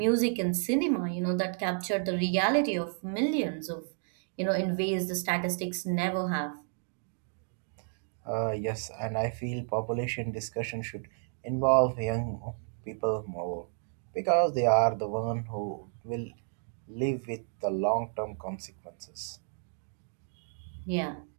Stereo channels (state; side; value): silent; left; 57 dB below the other